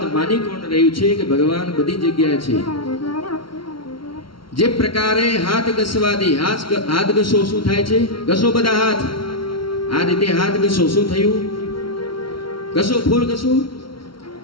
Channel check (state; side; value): late; right; 0.74 ms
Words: માની કોણ રહ્યું છે કે ભગવાન બધી જગ્યાએ છે. જે પ્રકારે હાથ ઘસવાથી હાથ ઘસો શું થાય છે? ઘસો બધા હાથ, આ રીતે હાથ ઘસો શું થયું? ઘસો ફૂલ ઘસો